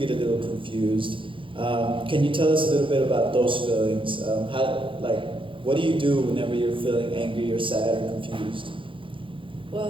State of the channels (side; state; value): left; late; 0.25 ms